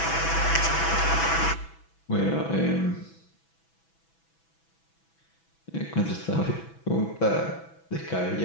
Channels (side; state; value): right; late; 6.1 ms